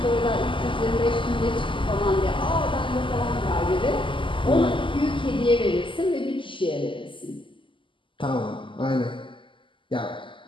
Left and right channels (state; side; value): late; right; 0.25 ms